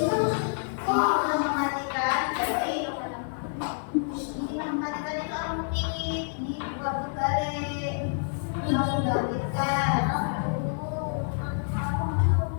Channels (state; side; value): silent; right; digital silence